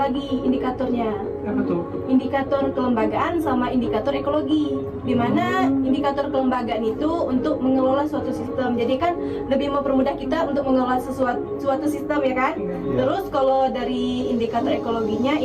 indikatornya. Apa tuh? Indikator kelembagaan sama indikator ekologi. Di mana indikator kelembagaan itu untuk mengelola suatu sistem. Jadi kan lebih mempermudah kita untuk mengelola suatu sistem ya kan? Iya. Terus kalau dari indikator ekologinya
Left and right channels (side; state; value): both; identical; correlation 1.00